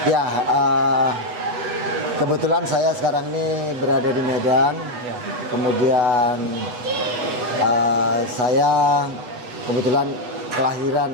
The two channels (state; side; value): late; left; 8.1 ms